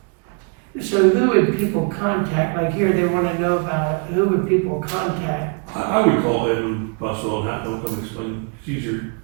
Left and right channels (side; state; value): left; quieter; 36.3 dB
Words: it. So who would people contact, like here, they wanna know about it, who would people contact? I would call Edwin Buswell and have them come explain, it's easier,